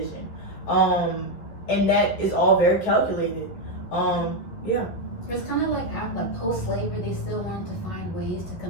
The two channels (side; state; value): right; late; 11 ms